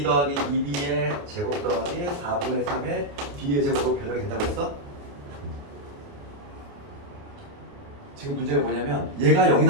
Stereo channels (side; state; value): left; late; 28 ms